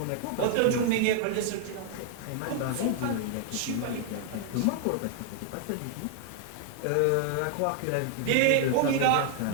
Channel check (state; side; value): different; both; correlation 0.00